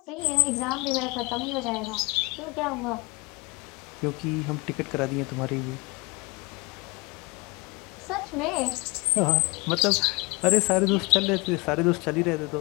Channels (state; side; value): quieter; right; 26.7 dB